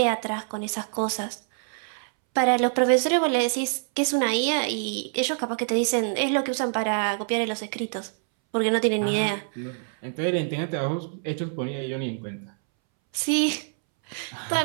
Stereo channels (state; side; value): silent; left; 61 dB below the other